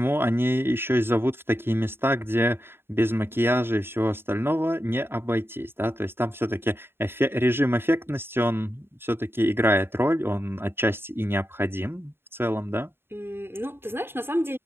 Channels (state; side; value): late; left; 0.11 ms